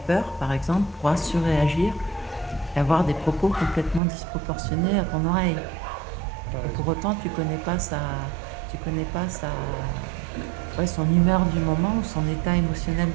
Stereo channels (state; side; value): drops out; left; at 4.0 s